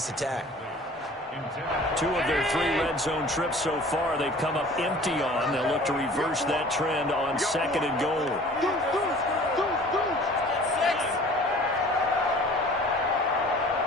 attack. 2 of their 3 red zone trips so far, they've come up empty on. They'll look to reverse that trend on 2nd and goal.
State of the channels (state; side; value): normal; both; correlation 0.47